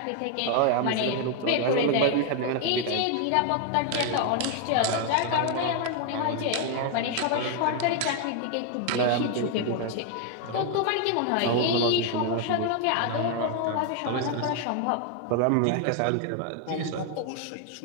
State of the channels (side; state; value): both; different; correlation 0.00